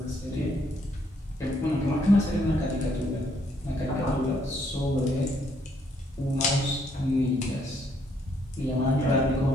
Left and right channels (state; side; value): normal; both; correlation 0.70